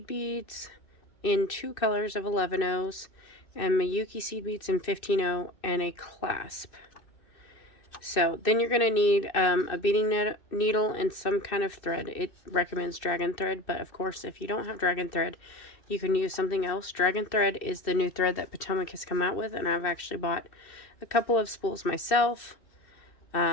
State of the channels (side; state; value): right; late; 2.6 ms